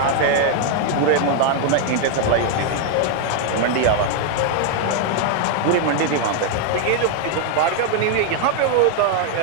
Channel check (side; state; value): both; different; correlation 0.00